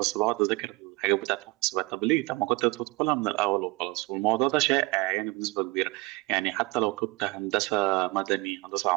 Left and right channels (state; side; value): quieter; left; 24.4 dB